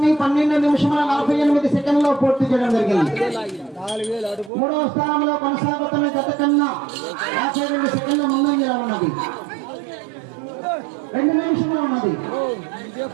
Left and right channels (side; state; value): left; drops out; at 4.5 s